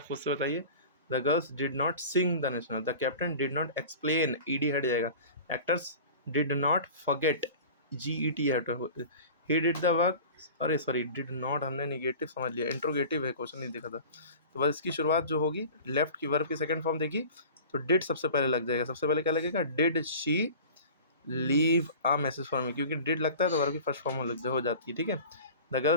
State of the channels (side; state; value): both; inverted; correlation -0.39